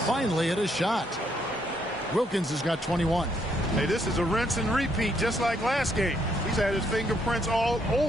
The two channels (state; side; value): normal; both; correlation 0.73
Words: finally hit a shot. Wilkins has got 21. Hey, this is a rinse and repeat just like last game. He's had his fingerprints all